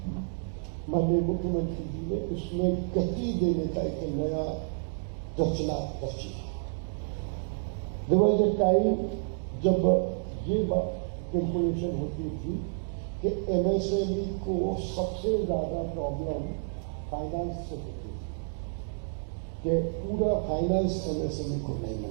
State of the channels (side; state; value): left; silent; digital silence